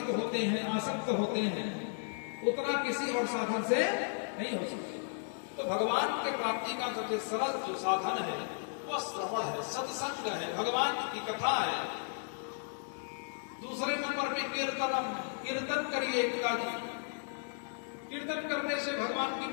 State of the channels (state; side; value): silent; right; 55 dB below the other